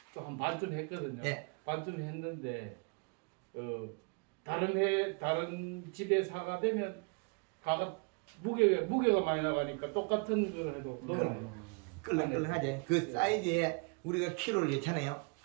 또 한 반쯤 했거든요. 네. 반쯤 했는데 다른 집에 사가 되면 가가 무게가 많이 나가니까 똑같은 걸 해도 놀아요. 끌렁끌렁하지. 그 사이즈에 우리가 키로를 예잖아요.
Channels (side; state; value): left; quieter; 34.1 dB